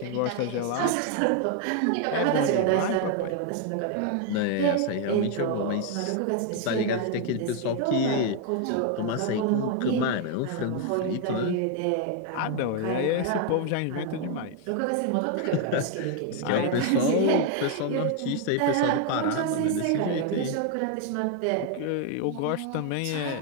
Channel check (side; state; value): both; different; correlation 0.01